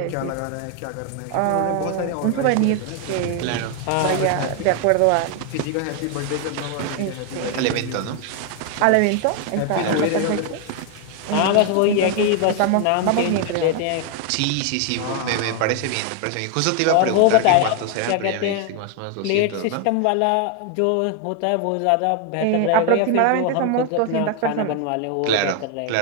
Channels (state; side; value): different; both; correlation 0.01